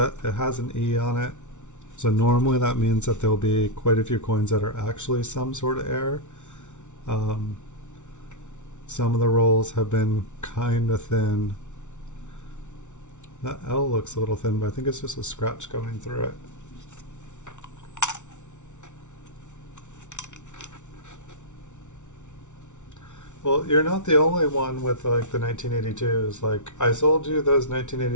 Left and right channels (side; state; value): right; late; 0.84 ms